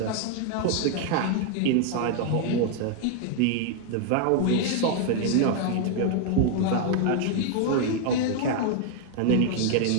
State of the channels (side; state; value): both; different; correlation 0.00